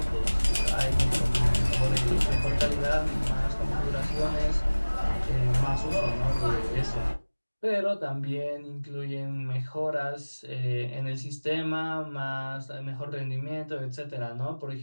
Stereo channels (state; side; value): inverted; both; correlation -1.00